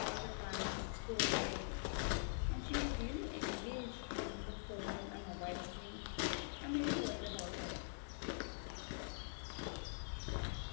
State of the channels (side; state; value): right; silent; digital silence